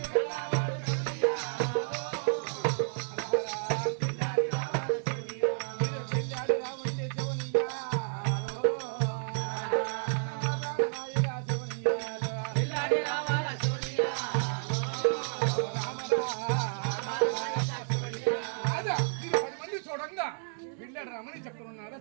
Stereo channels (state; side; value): silent; left; digital silence